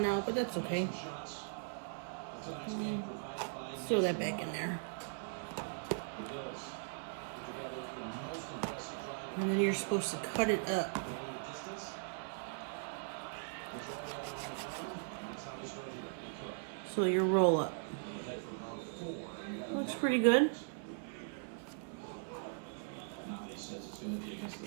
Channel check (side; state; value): left; silent; 52 dB below the other